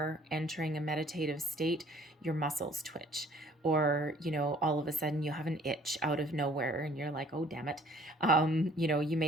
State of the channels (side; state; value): both; normal; correlation 0.56